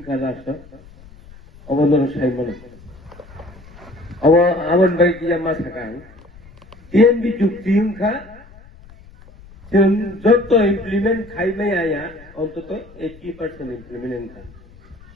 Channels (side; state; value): left; noise; rumble, 22 dB below the sound